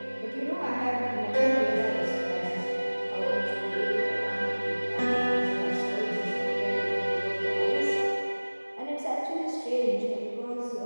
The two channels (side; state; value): both; inverted; correlation -1.00